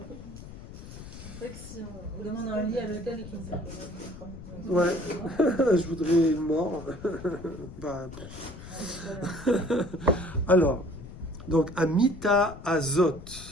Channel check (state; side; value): noise; left; rumble, 14 dB below the sound